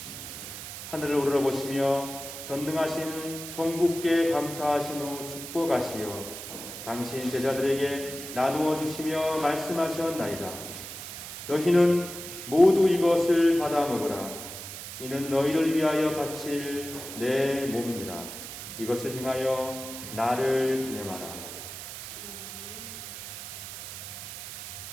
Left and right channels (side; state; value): right; noise; hiss, 10 dB below the sound